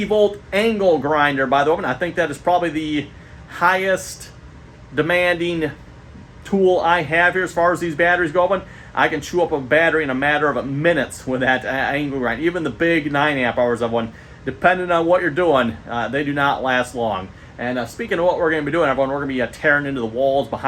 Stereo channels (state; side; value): identical; both; correlation 1.00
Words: volt angle grinder, by the way. And I think that is probably the highest demanding tool I have here as far as these batteries go. I can chew up a battery in a matter of minutes with that angle grind. Even the big 9 amp hours of one, depending on what you're doing, they do not last long. And speaking of what we're going to be doing, everyone, we're going to be tearing into the walls